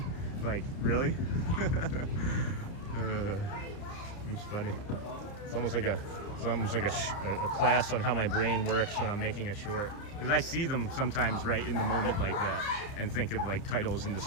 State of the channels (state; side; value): late; right; 30 ms